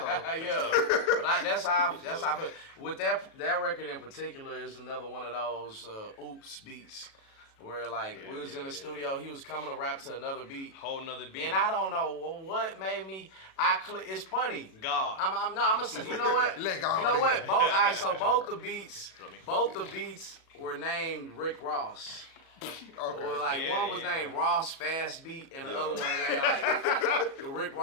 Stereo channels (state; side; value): late; right; 36 ms